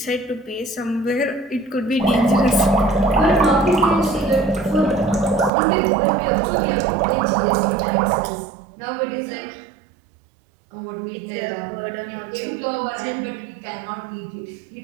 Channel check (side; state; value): left; drops out; at 5.5 s